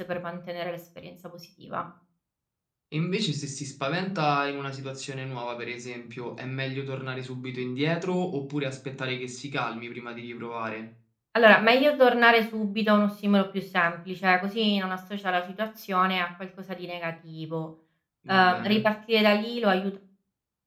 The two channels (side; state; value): both; identical; correlation 1.00